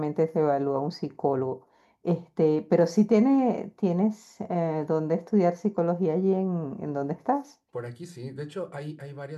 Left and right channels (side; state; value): both; identical; correlation 1.00